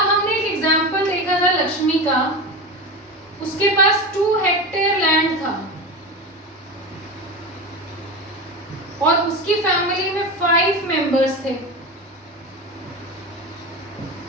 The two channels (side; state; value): both; normal; correlation 0.23